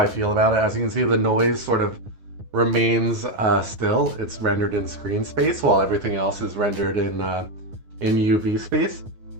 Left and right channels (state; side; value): late; left; 9.7 ms